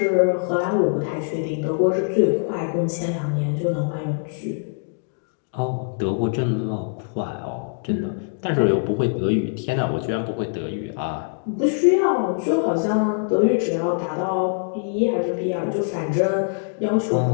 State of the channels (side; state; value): right; silent; digital silence